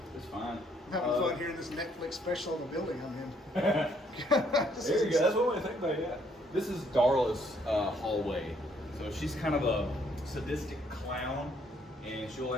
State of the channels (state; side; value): normal; both; correlation 0.67